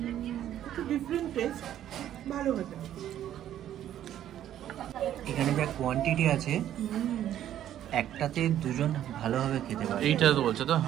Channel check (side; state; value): left; quieter; 11.4 dB